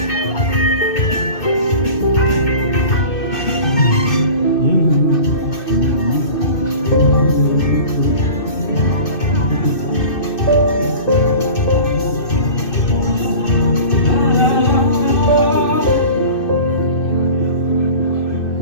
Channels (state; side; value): late; right; 2.6 ms